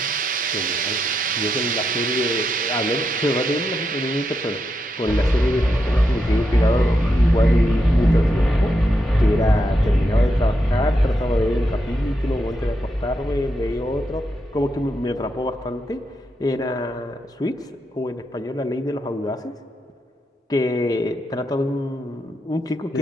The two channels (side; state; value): both; normal; correlation 0.83